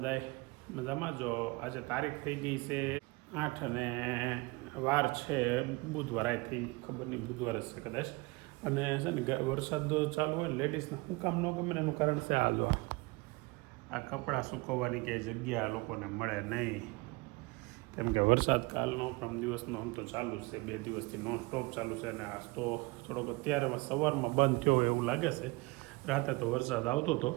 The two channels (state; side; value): quieter; left; 24.9 dB